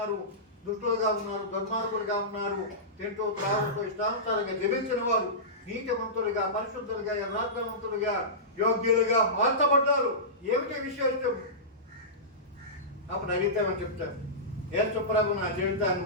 దుష్టులుగా ఉన్నారు, దుర్మార్గులుగా ఉన్నారు, తింటూ త్రాగుతూ ఇష్టానుసారంగా జీవించిన వారు నీతిమంతులుగా, పరిశుద్ధులుగా, యథార్థవంతులుగా, యోగ్యులుగా మార్చబడ్డారు. ఏమిటి విశేషం? అప్పుడు అడిగితేమని చెప్తారు, యేసు ప్రభు నా జీవితాన్ని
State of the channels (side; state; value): both; normal; correlation -0.18